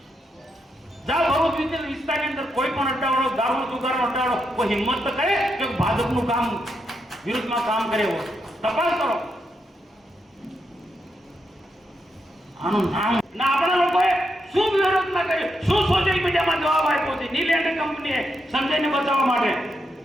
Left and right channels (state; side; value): normal; both; correlation 0.82